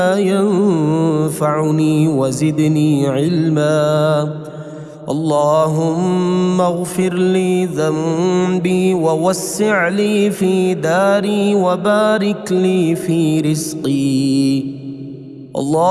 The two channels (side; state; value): both; identical; correlation 1.00